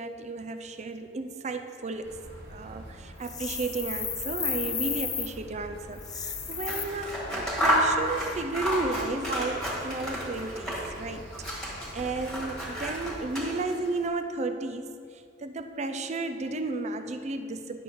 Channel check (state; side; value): normal; both; correlation 0.32